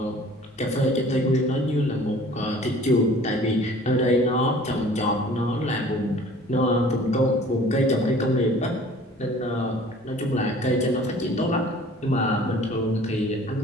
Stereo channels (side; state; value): both; normal; correlation 0.49